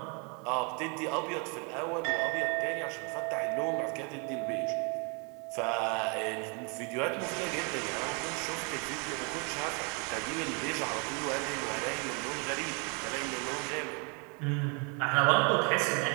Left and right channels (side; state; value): left; quieter; 34.5 dB